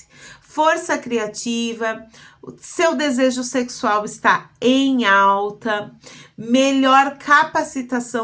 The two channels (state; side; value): identical; both; correlation 1.00